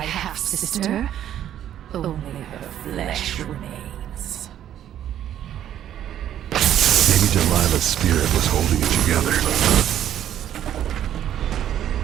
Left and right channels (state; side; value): quieter; left; 11.0 dB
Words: half-sister? Only her flesh remains. Maybe Delilah's spirit was holding it together.